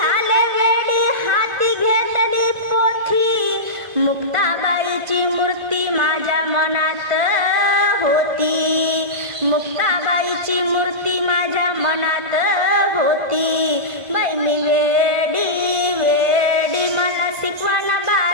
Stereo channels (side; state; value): left; late; 1.5 ms